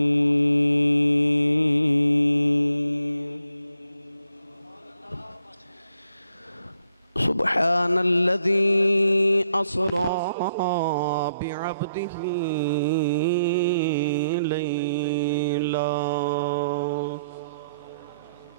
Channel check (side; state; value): both; inverted; correlation -0.75